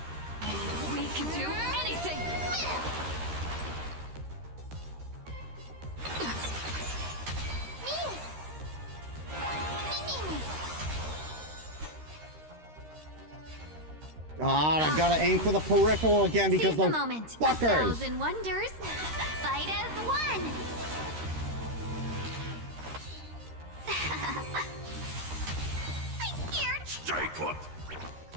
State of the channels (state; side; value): late; left; 13 ms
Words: We can do anything! God, I gotta aim for the peripheral again because Seize the those moment. fuckers. 1,000 wonders. Fight as one. I'm scared. Stay put!